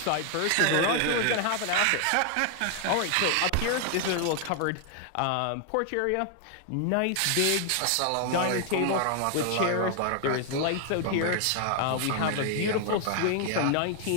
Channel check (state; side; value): different; both; correlation 0.00